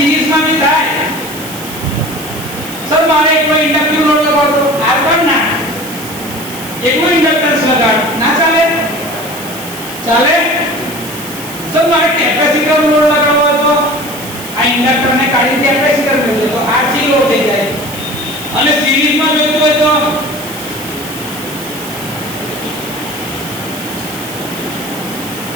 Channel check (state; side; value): noise; right; hiss, 13 dB below the sound